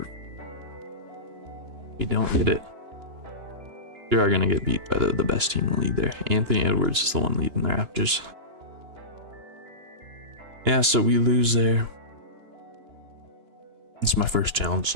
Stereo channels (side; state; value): left; late; 2.9 ms